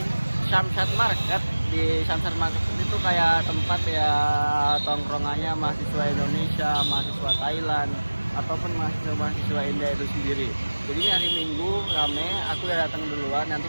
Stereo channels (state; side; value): inverted; both; correlation -1.00